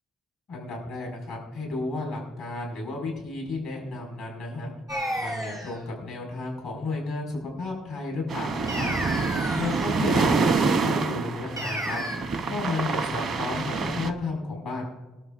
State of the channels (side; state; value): both; normal; correlation 0.68